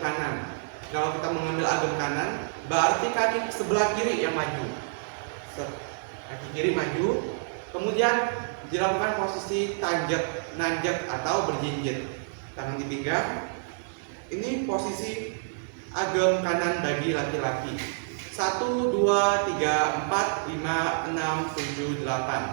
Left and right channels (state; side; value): silent; left; digital silence